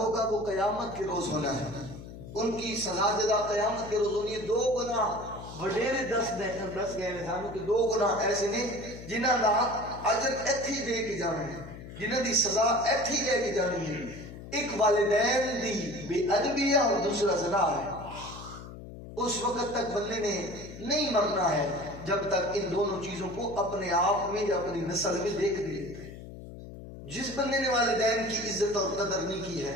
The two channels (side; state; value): left; noise; hum, 13 dB below the sound